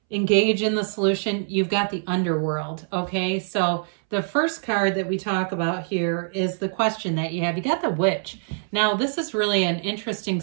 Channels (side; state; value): left; silent; 62 dB below the other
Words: engage in the solution? You've got the underworld. Okay, so the first card that we talk about here is the question that you have. You got the witch. Now, this is really an interesting